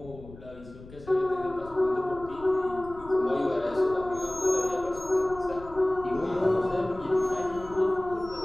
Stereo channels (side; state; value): left; noise; rumble, 18 dB below the sound